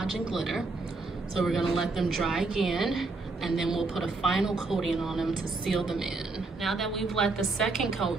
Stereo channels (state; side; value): quieter; left; 3.6 dB